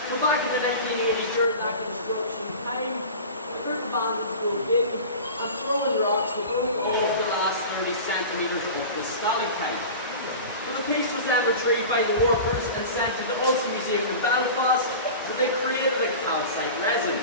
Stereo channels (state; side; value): inverted; both; correlation -0.34